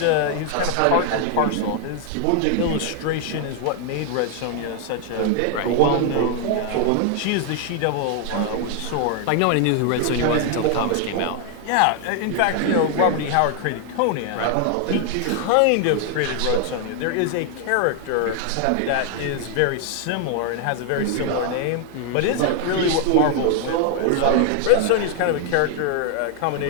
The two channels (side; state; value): both; different; correlation 0.00